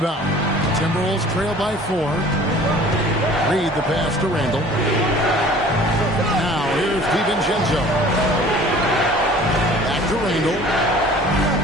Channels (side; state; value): both; normal; correlation 0.48